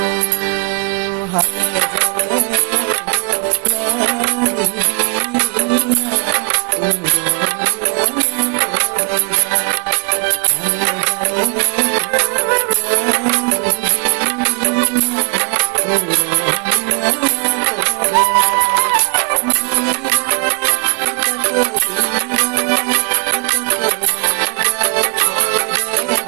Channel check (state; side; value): quieter; left; 37.8 dB